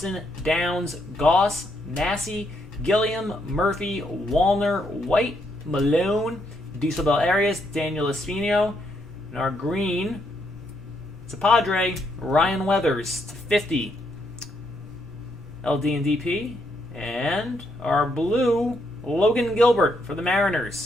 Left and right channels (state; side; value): normal; both; correlation 0.75